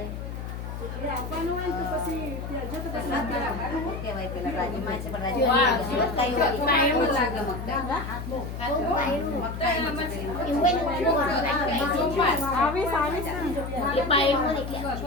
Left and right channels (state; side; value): noise; left; hum, 7 dB below the sound